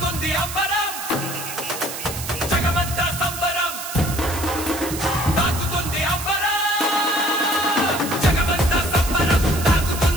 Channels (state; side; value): noise; right; hiss, 8 dB below the sound